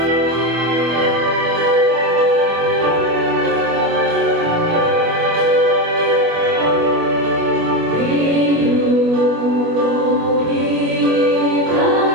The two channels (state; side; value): late; left; 25 ms